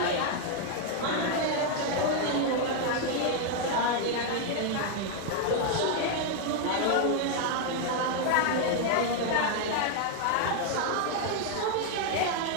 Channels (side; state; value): both; different; correlation 0.00